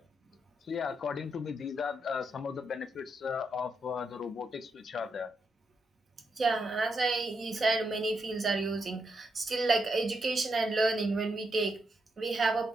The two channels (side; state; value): both; normal; correlation 0.82